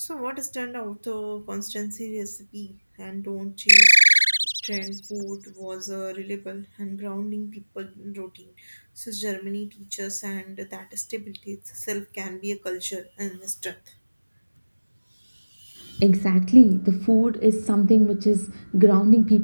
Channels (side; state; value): both; inverted; correlation -1.00